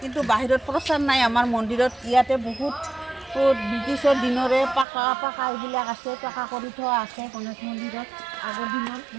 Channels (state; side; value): drops out; left; at 4.9 s